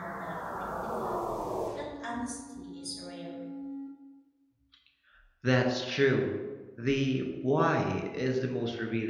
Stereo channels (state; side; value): identical; both; correlation 1.00